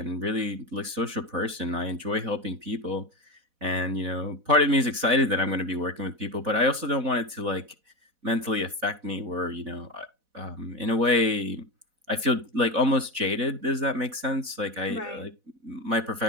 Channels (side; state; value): left; late; 4.1 ms